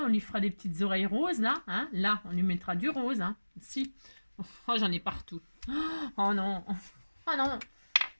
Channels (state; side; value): inverted; both; correlation -1.00